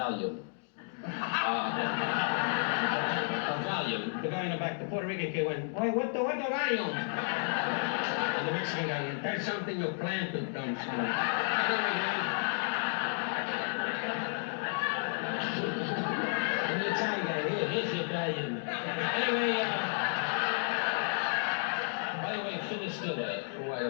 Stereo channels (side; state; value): right; silent; 56 dB below the other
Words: A Valium. The guy in the back, the Puerto Rican kid went, why, what the Valium? And the Mexican guy went, that's something you planted, dumb son. And the Italian guy, here's your Valium. Anyway, by the way, Phyllis Diller, who I